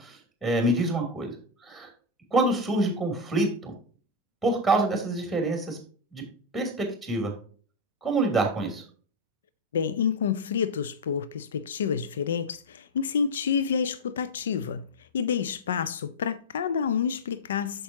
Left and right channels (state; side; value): normal; both; correlation 0.04